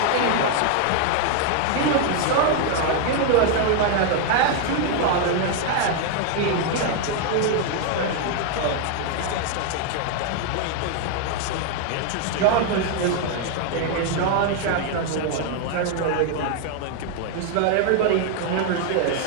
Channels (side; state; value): both; different; correlation 0.00